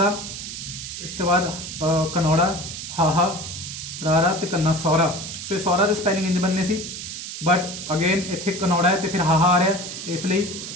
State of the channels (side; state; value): right; noise; hiss, 8 dB below the sound